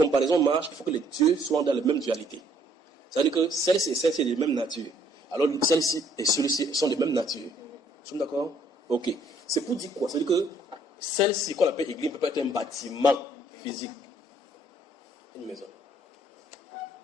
marchent, il faut que les dieux soient dans la même dualité. C'est-à-dire que celle-ci et celle-ci sont de même nature. Alors, celle-ci et celui-ci sont de même nature. Nous sommes d'accord? Ok. C'est pour dire quoi? C'est-à-dire que celle-ci qu'on appelle église peut pas être un bâtiment physique. Une maison.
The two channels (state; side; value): normal; both; correlation 0.64